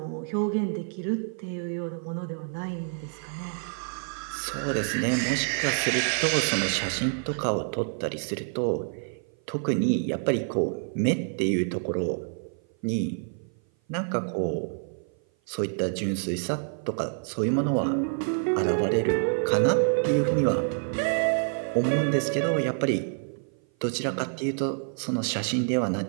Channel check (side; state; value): left; silent; 56 dB below the other